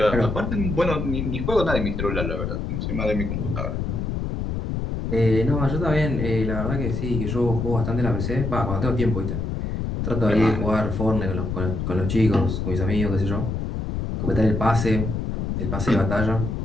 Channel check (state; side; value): noise; left; rumble, 2 dB below the sound